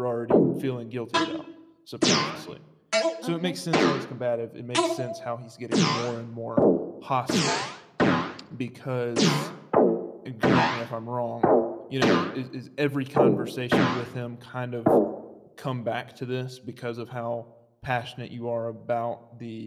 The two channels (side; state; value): both; identical; correlation 1.00